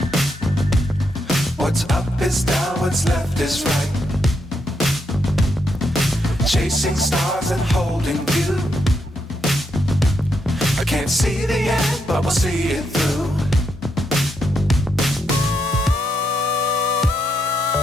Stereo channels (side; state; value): both; normal; correlation 0.80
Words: What's up is down, what's left is right. Chasing stars and holding you. I can't see the end, but we'll see it through.